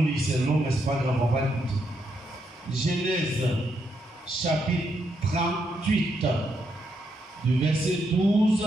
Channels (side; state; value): both; normal; correlation 0.79